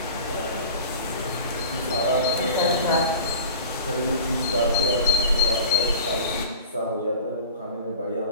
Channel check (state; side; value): inverted; both; correlation -0.38